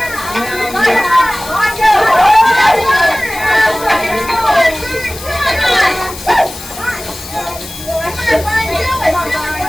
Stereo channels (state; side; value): noise; left; hiss, 13 dB below the sound